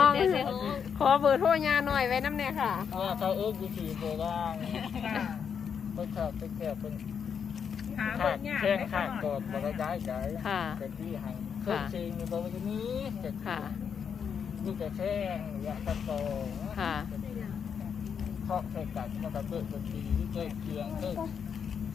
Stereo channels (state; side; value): quieter; right; 7.1 dB